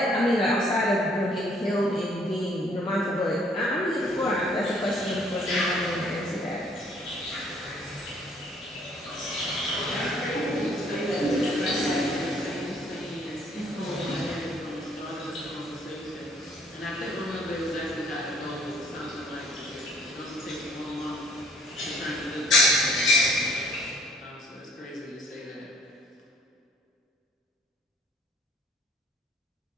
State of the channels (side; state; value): both; normal; correlation 0.60